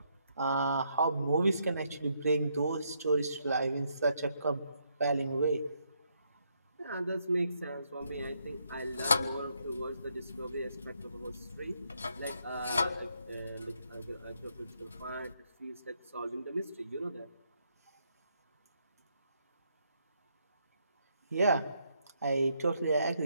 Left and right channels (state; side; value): inverted; both; correlation -0.75